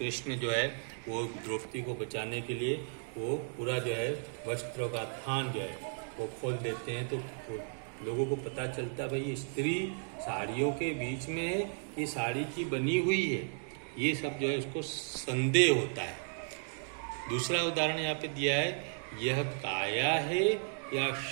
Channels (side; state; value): left; silent; 55 dB below the other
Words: जो है वो द्रौपदी को बचाने के लिए वो पूरा जो है वस्त्रों का थान जो है वो खोल देते हैं। तो लोगों को पता चलता भाई स्त्री साड़ियों के बीच में है, ये साड़ी की बनी हुई है। ये सब जो है उसको संदेह होता है। दूसरा उदाहरण यहाँ पे दिया है, यह काया है या